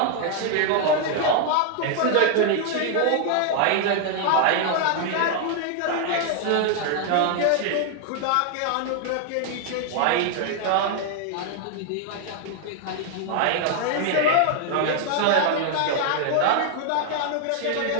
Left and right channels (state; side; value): different; both; correlation 0.00